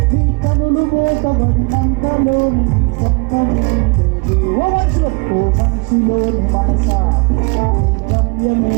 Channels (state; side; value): quieter; left; 31.2 dB